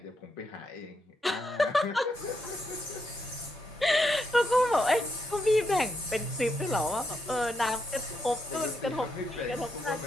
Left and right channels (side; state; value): both; normal; correlation 0.81